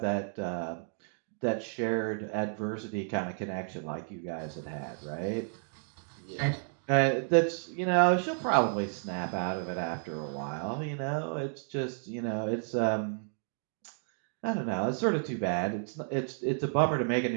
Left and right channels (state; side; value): silent; left; 56 dB below the other